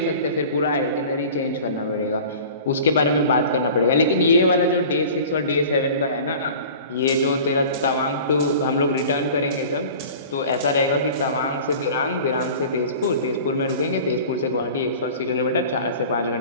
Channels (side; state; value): both; inverted; correlation -0.41